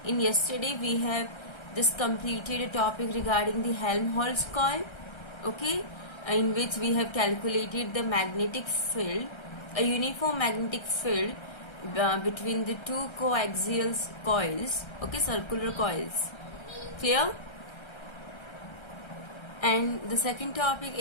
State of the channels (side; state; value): right; late; 1.3 ms